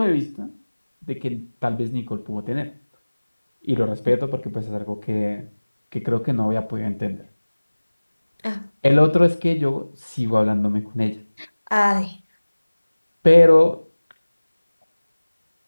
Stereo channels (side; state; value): both; inverted; correlation -1.00